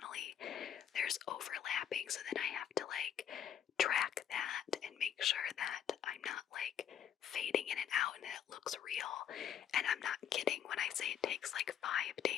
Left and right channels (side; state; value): right; quieter; 9.3 dB